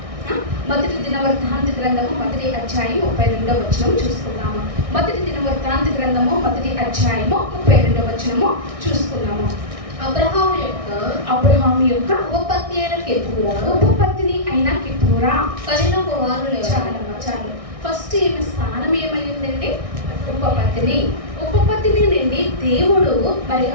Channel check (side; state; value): left; late; 1.6 ms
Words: మొదటి దినవృత్తాంత గ్రంథము 1వ అధ్యాయం 32వ వచనం చూసుకుందాము. మొదటి దినవృత్తాంత గ్రంథము 1వ అధ్యాయము 32వ వచనము చూసుకున్నాము. అబ్రహాము యొక్క ఉపపత్ని అయిన కెతూరా ఉపపత్ని అయిన కెతూరా కనిన కుమారులు చాలు. ఫస్ట్ ఏమి స్థానం ఏమైందండి? ఉపపత్ని. ఉపపత్ని నుండి దేవుడు మరి